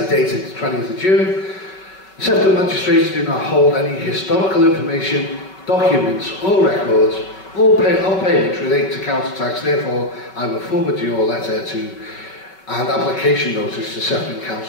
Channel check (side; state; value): right; late; 5.3 ms